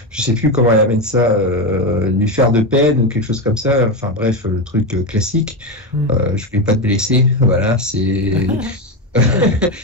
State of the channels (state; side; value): normal; both; correlation 0.14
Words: je sais plus comment elle amène ça, lui faire de peine ou quelque chose comme ça. Enfin bref, le truc classique. Je voulais pas te blesser. Voilà, c'est.